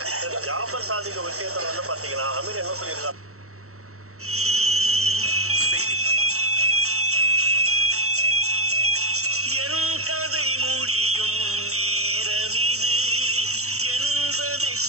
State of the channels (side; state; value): left; late; 0.64 ms